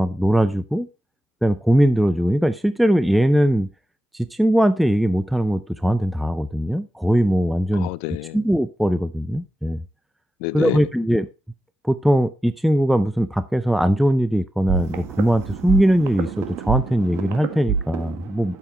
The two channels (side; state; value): both; normal; correlation 0.91